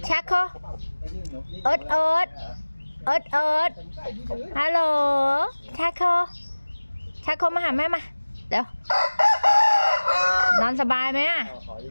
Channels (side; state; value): both; inverted; correlation -1.00